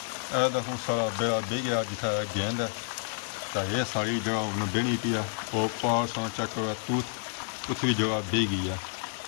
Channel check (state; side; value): silent; right; 58 dB below the other